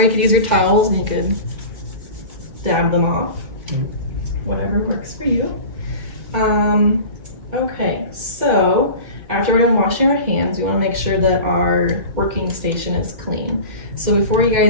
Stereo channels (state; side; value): late; left; 2.1 ms